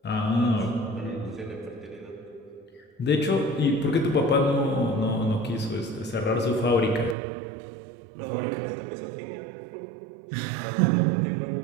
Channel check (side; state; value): left; drops out; at 7.2 s